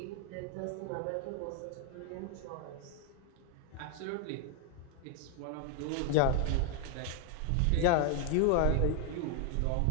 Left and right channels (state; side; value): different; both; correlation 0.00